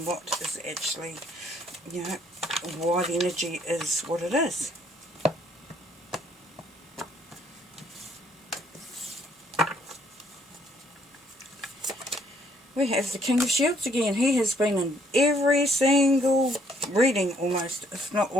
what is actually, why the energy is what it is. We have the King of Shields again. He has been in every single reading almost, if not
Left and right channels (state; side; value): normal; both; correlation 0.66